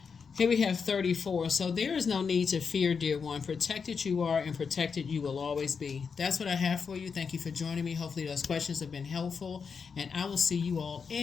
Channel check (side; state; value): right; quieter; 5.8 dB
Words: Here we have 34. So there is no need to fear, dear one. Protected you are, and protected you will always be. That's what I have for you. Thank you for joining me. Hopefully those questions have been helpful, and I will see you all